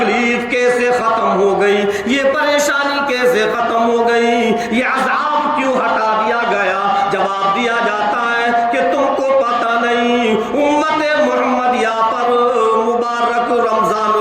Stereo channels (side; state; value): both; identical; correlation 1.00